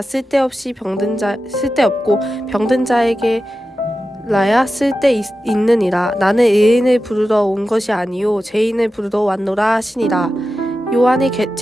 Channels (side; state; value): both; normal; correlation 0.92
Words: 쓸데없고 병든 자에게 라야 쓸데 있느니라. 나는 의인을 부르러 온 것이 아니요 죄인을 부르러 왔노라 하시니라. 요한의